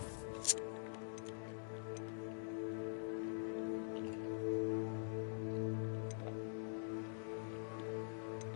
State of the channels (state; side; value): silent; right; digital silence